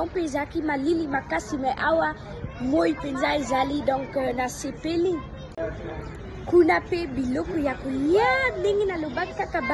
pe ezaki malili makasi me awa moi penza ezali donc na sepeli. Kuna pe biloko ya kolia ndenge nalobaki kaka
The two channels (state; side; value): identical; both; correlation 1.00